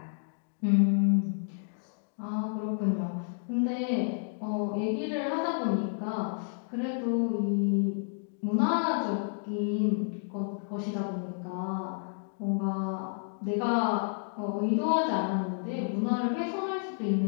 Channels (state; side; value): silent; right; digital silence